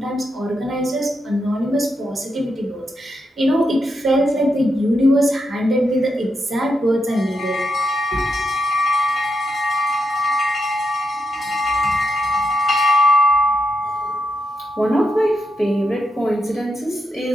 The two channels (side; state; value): both; normal; correlation 0.83